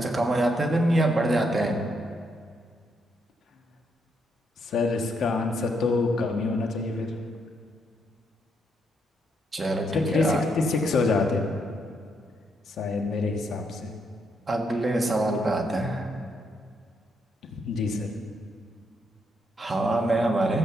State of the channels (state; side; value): normal; both; correlation 0.77